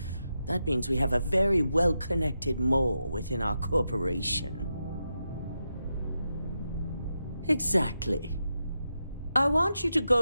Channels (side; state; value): both; inverted; correlation -0.87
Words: that means we have a very well-connected mole within our corporation. Exactly. I want you to